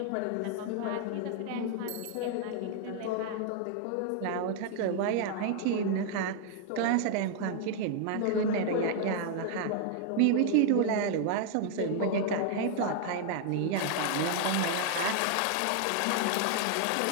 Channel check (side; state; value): both; different; correlation 0.00